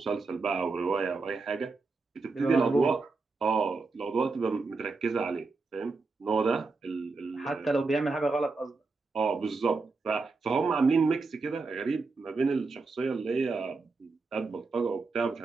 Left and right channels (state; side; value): quieter; left; 4.0 dB